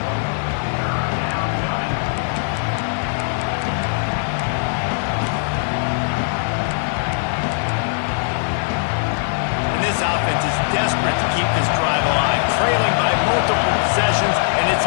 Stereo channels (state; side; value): silent; right; digital silence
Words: And this offense is desperate to keep this drive alive, trailing by multiple possessions, and it's